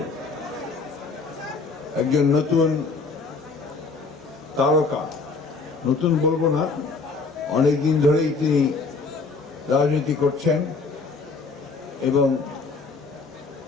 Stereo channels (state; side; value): quieter; right; 4.2 dB